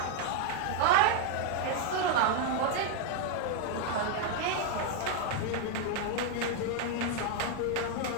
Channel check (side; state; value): both; different; correlation 0.01